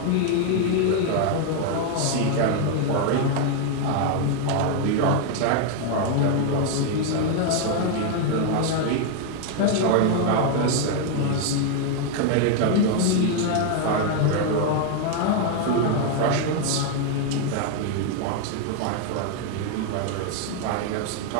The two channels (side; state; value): both; different; correlation 0.00